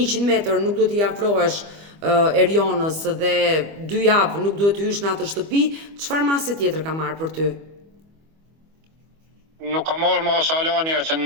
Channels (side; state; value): left; late; 25 ms